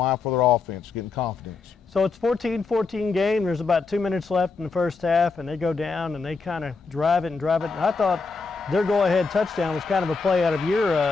for their offense, getting confidence. So it's 14-14 game. There's about 2 minutes left in the first half, and they go down and they kind of drive it. And I thought their go-ahead touchdown was kind of a play out of your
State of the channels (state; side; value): quieter; right; 4.5 dB